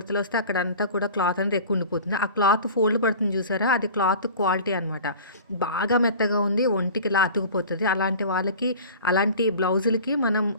అక్కడంతా కూడా క్లాత్ అనేది ఎక్కువ ఉండిపోతుంది. ఆ క్లాత్ ఫోల్డ్ పడుతుంది చూసారా? అది క్లాత్ క్వాలిటీ అనమాట. బాగా మెత్తగా ఉంది. ఒంటికి ఇలా అతుకుపోతది. అలాంటి వాళ్ళకి అలాంటి బ్లౌజులకి మనం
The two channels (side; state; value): both; inverted; correlation -0.40